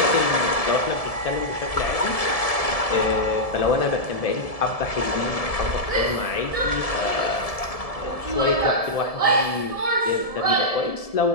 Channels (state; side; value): late; right; 1.7 ms